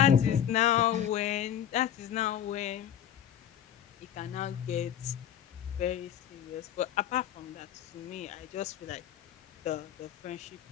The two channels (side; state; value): right; quieter; 10.2 dB